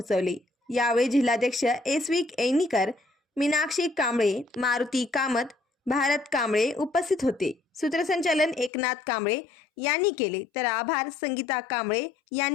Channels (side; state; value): right; drops out; at 8.7 s